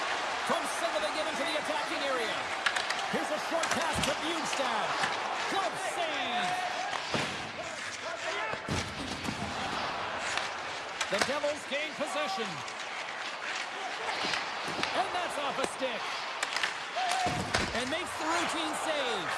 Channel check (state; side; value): identical; both; correlation 1.00